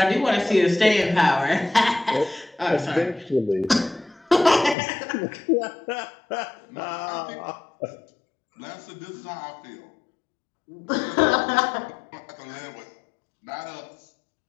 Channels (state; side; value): drops out; right; at 4.8 s